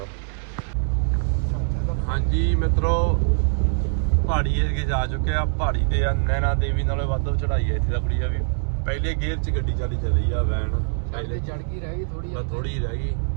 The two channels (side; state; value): left; silent; 63 dB below the other